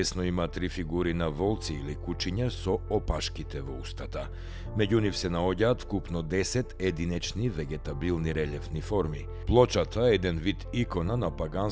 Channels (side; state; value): both; identical; correlation 1.00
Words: има три фигури на волци или кучиња со опашките во устата. Меѓу нив се наоѓаат вкупно 10 единечни вегетабилни релјефни форми. Плочата е еден вид икона на